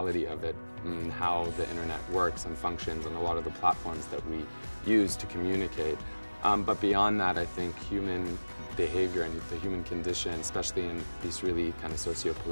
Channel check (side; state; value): both; inverted; correlation -1.00